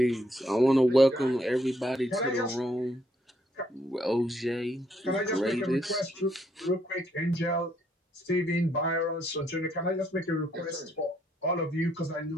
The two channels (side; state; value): both; normal; correlation 0.72